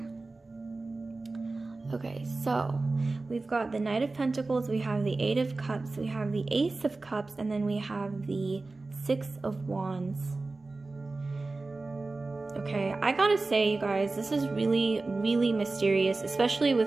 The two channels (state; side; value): quieter; left; 3.4 dB